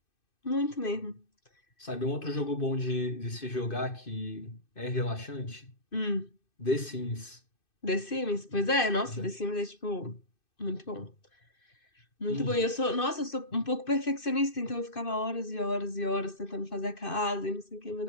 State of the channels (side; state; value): right; late; 2.6 ms